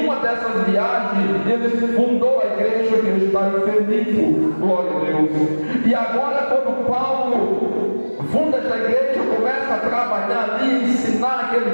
uma dessas viagens ele fundou a igreja que está em Filipe, glória a Deus. E agora, quando Paulo funda esta igreja, começa a trabalhar ali, ensinar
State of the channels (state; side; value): inverted; both; correlation -1.00